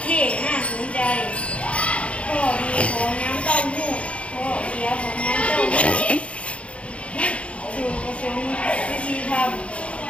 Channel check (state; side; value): late; right; 0.062 ms